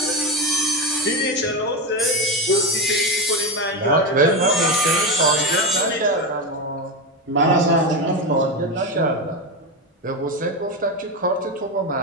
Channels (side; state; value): both; normal; correlation 0.15